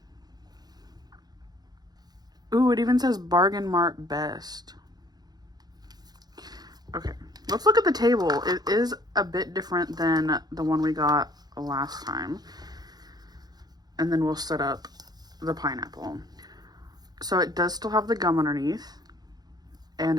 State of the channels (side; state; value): left; late; 0.19 ms